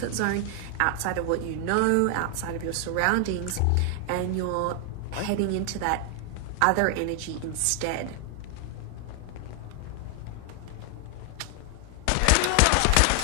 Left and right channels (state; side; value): different; both; correlation 0.00